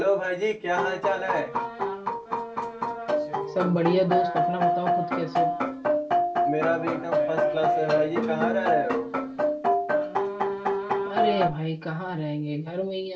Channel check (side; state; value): both; identical; correlation 1.00